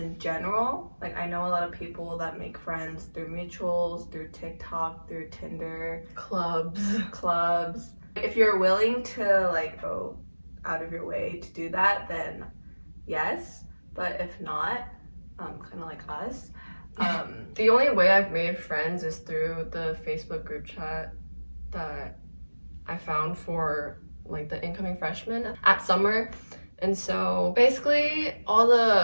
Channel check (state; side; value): inverted; both; correlation -1.00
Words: general, like I know a lot of people that make friends through mutuals, through TikTok, through Tinder, clubs. If you're willing to like go out of your way to do that, then yes. But if not, kind of like us. The only way I've made friends is through the Facebook group chat that I found for like the incoming freshmen at summer. And so basically all